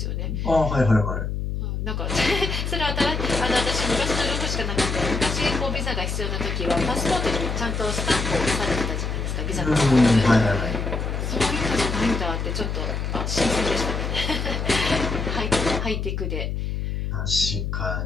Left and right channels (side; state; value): left; noise; hum, 2 dB below the sound